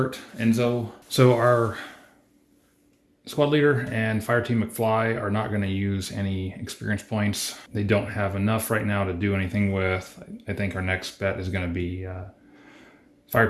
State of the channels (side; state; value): both; identical; correlation 1.00